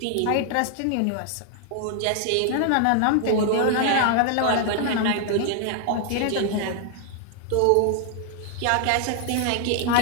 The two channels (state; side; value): different; both; correlation 0.00